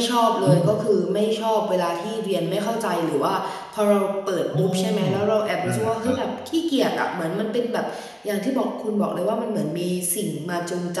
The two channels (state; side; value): identical; both; correlation 1.00